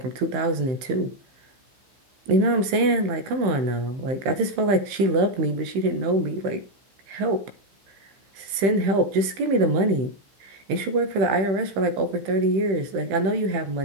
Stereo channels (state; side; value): late; left; 15 ms